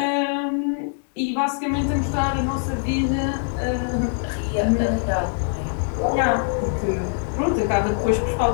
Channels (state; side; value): silent; right; digital silence